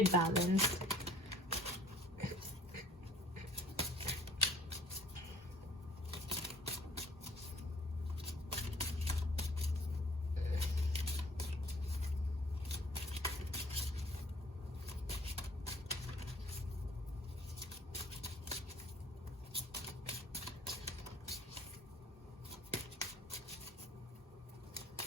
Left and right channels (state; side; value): normal; both; correlation 0.55